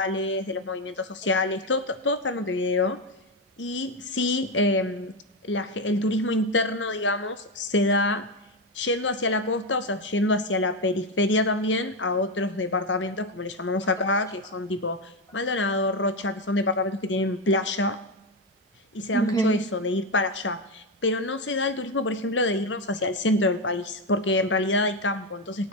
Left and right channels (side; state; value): both; normal; correlation 0.10